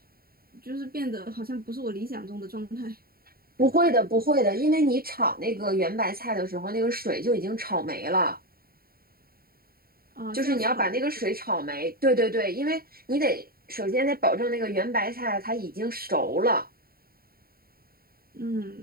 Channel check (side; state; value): left; late; 0.43 ms